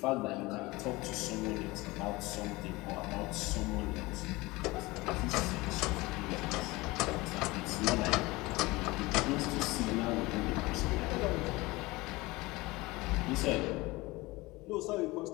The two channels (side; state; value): right; quieter; 21.8 dB